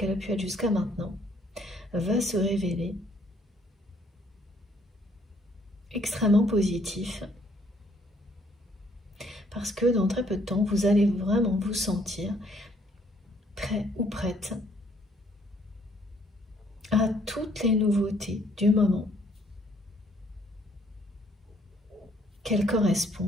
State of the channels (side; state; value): both; normal; correlation 0.65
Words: a pu être jusqu'à maintenant, va se révéler extrêmement positif. Parce que dans très peu de temps, vous allez vraiment vous sentir prêt ou prête à toutes les nouveautés du moment, qu'elles